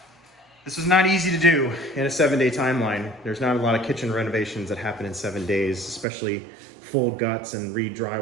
easy to do in a 7-day timeline. There's not a lot of kitchen renovations that happen in 7 days, especially full guts and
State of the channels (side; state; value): left; drops out; at 6.1 s